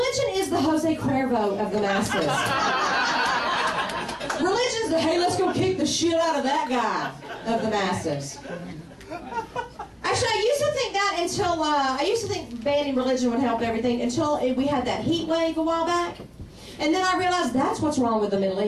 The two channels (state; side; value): identical; both; correlation 1.00